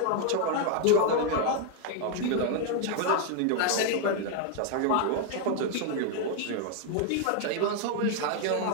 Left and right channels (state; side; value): different; both; correlation 0.00